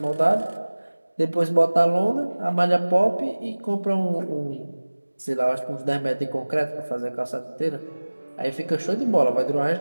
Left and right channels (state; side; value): inverted; both; correlation -1.00